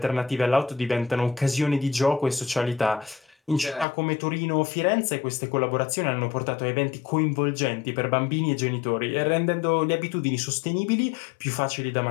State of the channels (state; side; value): drops out; right; at 3.9 s